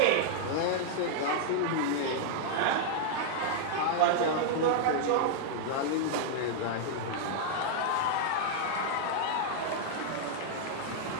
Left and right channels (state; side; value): different; both; correlation -0.01